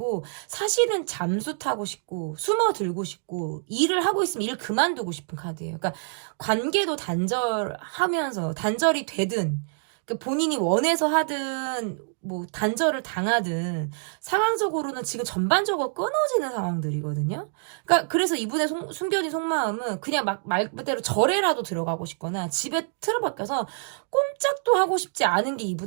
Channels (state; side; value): silent; left; digital silence